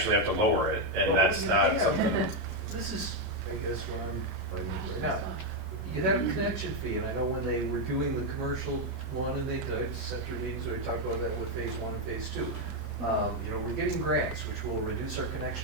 have to lower it, and that's not something. This is, I guess, where I'm Now, you have a connection fee, and I know when they were doing the commercial one, and they did, center meetings, where they talked about that with phase one and phase two. You know, we're getting grants, which will reduce our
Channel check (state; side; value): normal; both; correlation 0.03